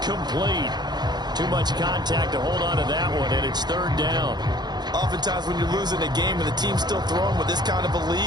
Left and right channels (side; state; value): left; late; 0.20 ms